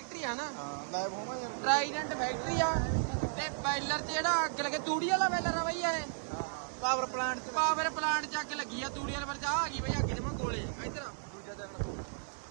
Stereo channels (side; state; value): left; silent; digital silence